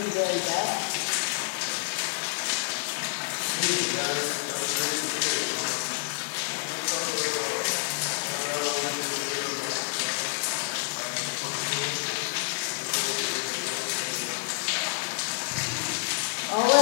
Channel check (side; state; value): right; silent; digital silence